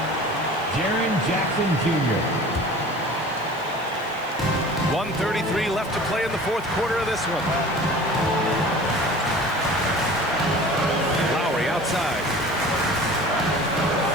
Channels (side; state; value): left; noise; hiss, 24 dB below the sound